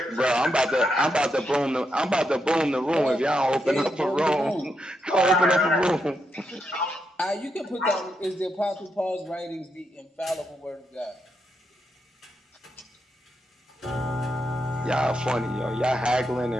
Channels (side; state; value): both; normal; correlation 0.82